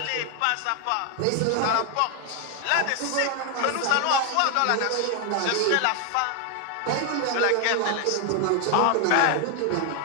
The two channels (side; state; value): both; different; correlation 0.01